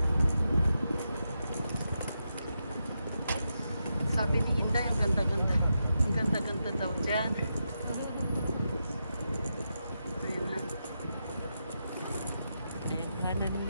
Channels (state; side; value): inverted; both; correlation -0.86